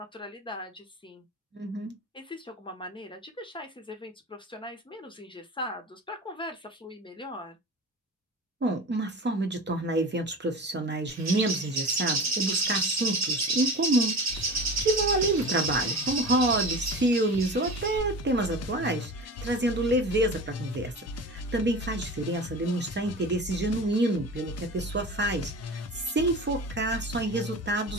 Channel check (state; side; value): normal; both; correlation 0.34